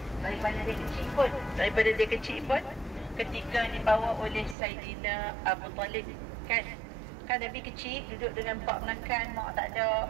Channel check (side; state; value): left; drops out; at 4.5 s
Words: daripada dia kecil pun ketika dibawa oleh Saidina Abu Talib, kan Nabi kecil duduk dengan pak menakan, mak tak ada